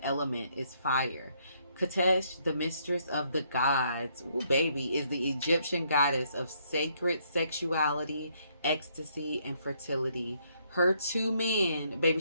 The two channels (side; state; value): both; inverted; correlation -0.70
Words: element is fire. Katesh, the mistress of the gods, ooh, baby, is the Egyptian goddess of sacred sexuality, ecstasy, and fertility. Her 2 men,